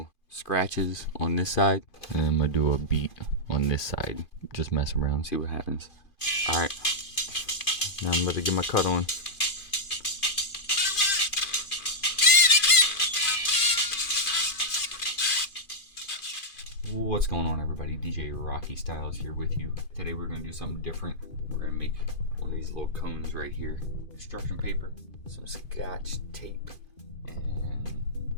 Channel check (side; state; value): right; late; 2.4 ms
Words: scratches on this side, and I'm gonna do a beat on this side. Just mess around, see what happens. Alright, now I'm about to get my cut on. What's going on, everybody? DJ Rocky Styles here with you. Today we're gonna do something different. We're gonna make one of these little cones right here. Construction paper, some scotch tape, and